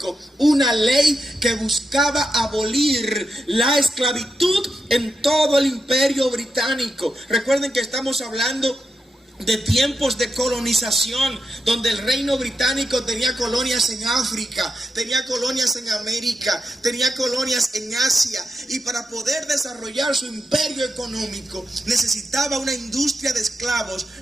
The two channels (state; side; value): normal; both; correlation 0.86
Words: una ley que buscaba abolir la esclavitud en todo el imperio británico. Recuerden que estamos hablando de tiempos de colonización, donde el reino británico tenía colonias en África, tenía colonias en América, tenía colonias en Asia, y para poder desarrollar su imperio económico necesitaba una industria de esclavos